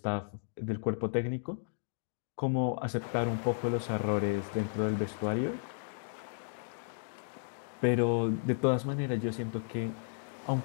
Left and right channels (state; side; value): silent; right; digital silence